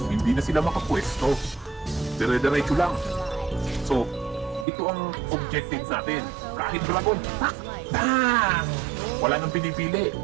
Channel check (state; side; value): drops out; left; at 4.7 s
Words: hindi na sila makapwesto. Dire-diretso lang. So, ito ang objective natin. Kahit dragon, tak! Bang! Wala nang pinipili,